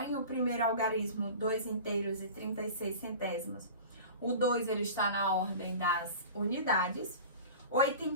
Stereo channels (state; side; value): inverted; both; correlation -0.37